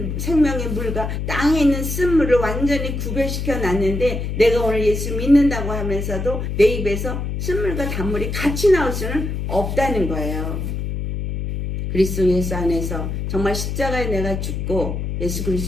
생명의 물과 땅에 있는 쓴물을 완전히 구별시켜 놨는데 내가 오늘 예수 믿는다고 하면서도 내 입에서 쓴물과 단물이 같이 나올 수는 없다는 거예요. 그리스도 예수 안에서 정말 십자가에 내가 죽고 예수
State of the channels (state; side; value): noise; left; hum, 3 dB below the sound